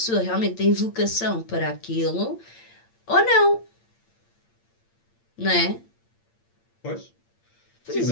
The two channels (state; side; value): late; right; 8.7 ms